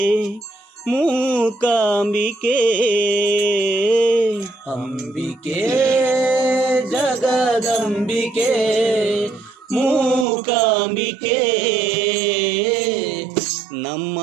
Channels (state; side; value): drops out; left; at 10.2 s